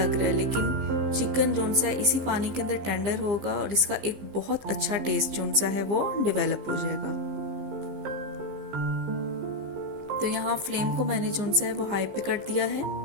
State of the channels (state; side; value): late; left; 15 ms